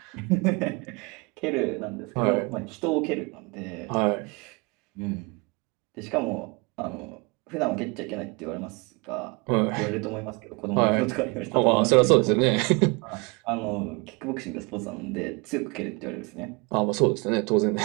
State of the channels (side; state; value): left; quieter; 28.9 dB